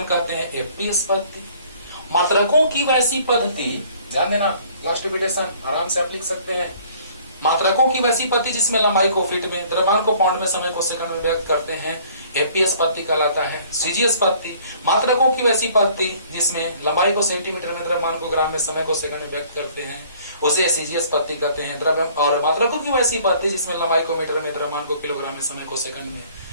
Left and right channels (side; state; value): both; inverted; correlation -0.56